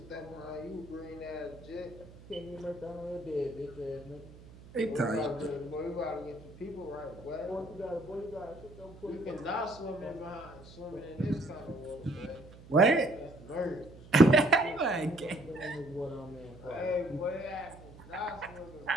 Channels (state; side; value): noise; right; hum, 19 dB below the sound